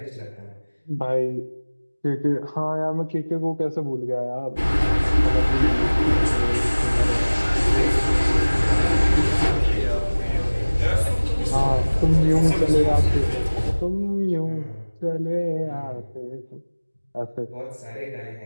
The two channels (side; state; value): both; inverted; correlation -1.00